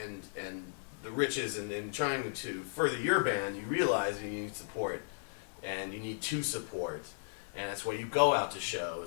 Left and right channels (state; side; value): silent; right; 54 dB below the other